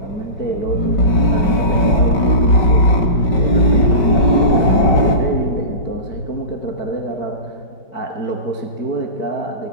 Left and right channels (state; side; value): late; right; 5.3 ms